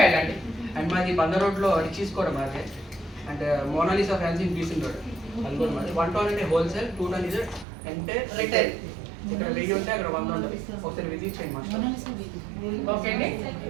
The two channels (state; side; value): drops out; left; at 7.7 s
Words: వెళ్ళండి. అండ్ మాది బంద రోడ్ లో రిచీస్ కూడా మాదే. అండ్ మోనాలిసా ఫ్యాన్సీ పీసింగ్ రోడ్ అది కూడా మాది. 1 టౌన్ అంటే హోల్సేల్, 2 టౌన్ ఇది ఎంటైర్ రిటైల్. ఇక్కడ 1000 ఉంటే అక్కడ 100 ఉంటుంది. ఒకసారి విజిట్ చేయండి మాస్టర్. ఓకే అండి.